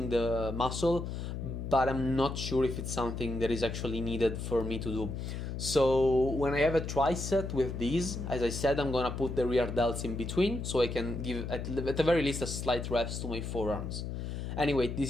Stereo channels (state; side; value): noise; left; hum, 5 dB below the sound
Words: the muscle, but I'm not sure if it's something that is actually needed for me to do. So when I have a tricep with these, as I said, I'm gonna put the rear delts in between so I can give at the very least a slight rest to my forearms. Anyway,